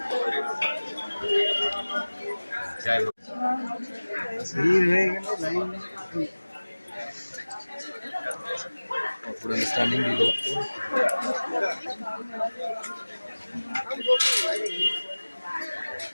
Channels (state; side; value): inverted; both; correlation -1.00